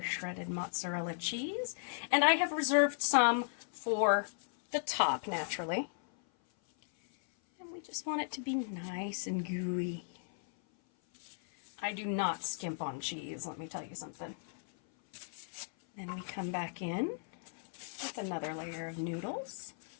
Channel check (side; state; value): right; silent; 54 dB below the other